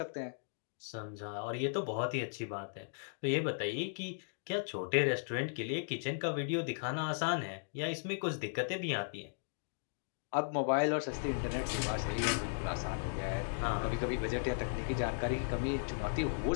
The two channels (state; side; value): silent; right; digital silence